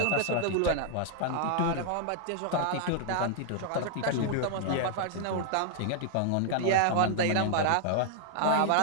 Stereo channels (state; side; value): different; both; correlation -0.01